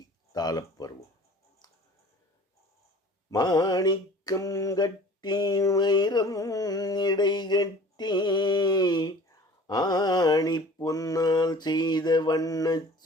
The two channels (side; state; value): both; normal; correlation 0.45